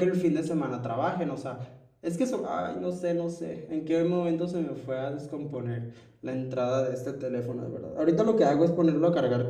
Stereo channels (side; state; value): both; identical; correlation 1.00